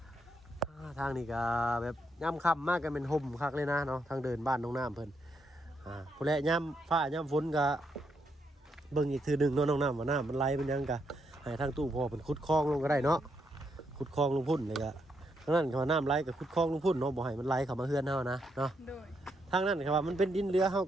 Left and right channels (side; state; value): both; normal; correlation 0.79